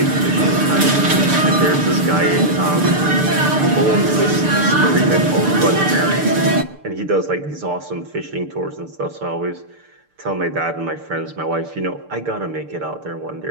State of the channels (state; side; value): late; left; 6.7 ms